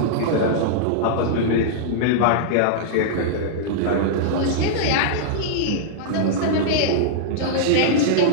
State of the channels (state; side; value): different; both; correlation -0.02